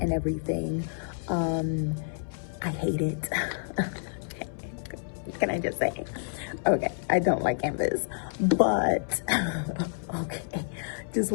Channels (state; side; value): silent; right; 59 dB below the other